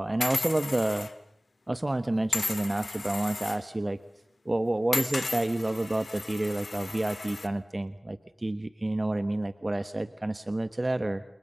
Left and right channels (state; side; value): normal; both; correlation 0.98